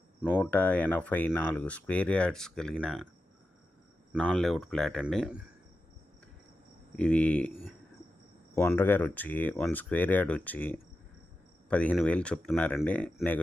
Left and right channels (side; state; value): both; normal; correlation 0.91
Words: 184 స్క్వేర్ యార్డ్స్ కలిగిన నాన్ లేఅవుట్ ఫ్లాట్ అండి. ఇది ఓనర్ గారు వచ్చి 1 స్క్వేర్ యార్డ్ వచ్చి 15,000 చెప్తున్నారండి,